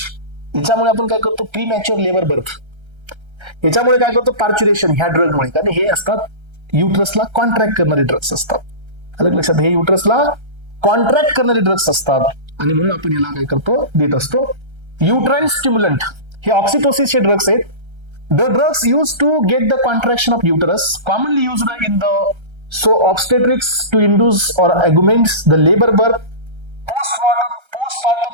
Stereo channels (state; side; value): late; left; 1.3 ms